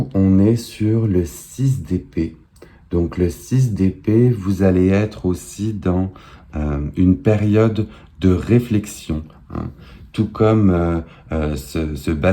on est sur le 6 d'épée. Donc le 6 d'épée, vous allez être aussi dans une période de réflexion, hein. Tout comme ce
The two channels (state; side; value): identical; both; correlation 1.00